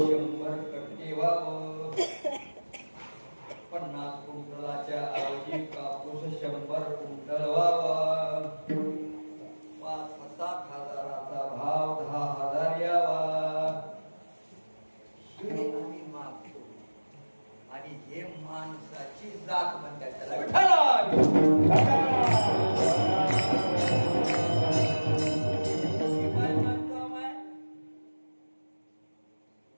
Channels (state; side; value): inverted; both; correlation -1.00